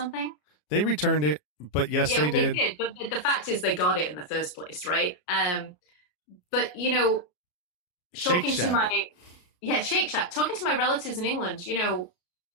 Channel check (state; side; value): late; right; 34 ms